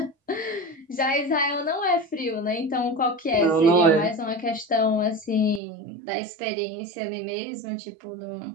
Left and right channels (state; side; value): drops out; left; at 5.6 s